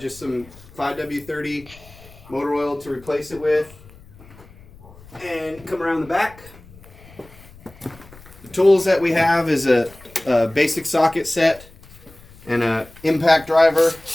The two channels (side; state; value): left; noise; rumble, 23 dB below the sound